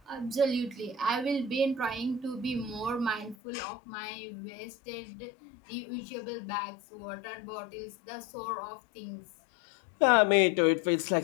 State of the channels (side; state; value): right; drops out; at 3.4 s